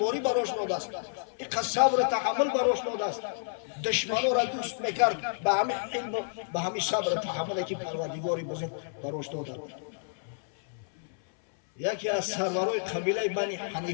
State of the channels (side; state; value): right; silent; 58 dB below the other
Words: براش داده است اینقدر صبر تحمل براش داده است دشمنان را دوست میکرد به همین حلم و به همین صبر تحملی که پروردگار بزرگ براش داده یکی از سرورای قبیله بنی